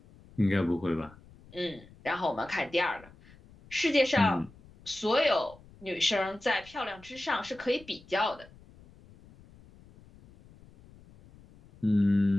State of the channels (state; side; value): noise; left; rumble, 24 dB below the sound